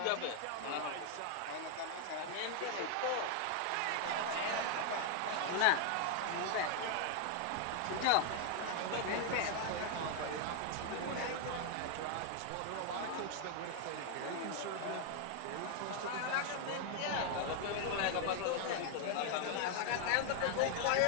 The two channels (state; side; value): different; both; correlation 0.00